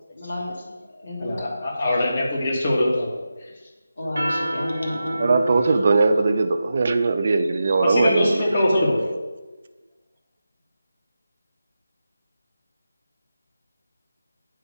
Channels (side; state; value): both; inverted; correlation -0.90